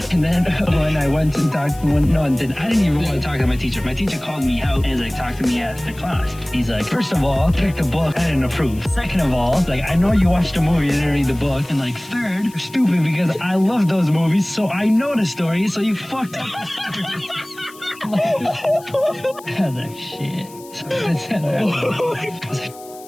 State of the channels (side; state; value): left; noise; hiss, 21 dB below the sound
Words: then when I went and talked, I didn't even want to talk to my teacher. My teacher called me out and was like, talk to me at the class. He's like, first of all, pick the book. I didn't approve. Second of all, like, I know you watched the movie, you didn't read the book. And like, third, you're stupid because I love those movies, so I know the story, so you fucked up. I was like, shit. So I was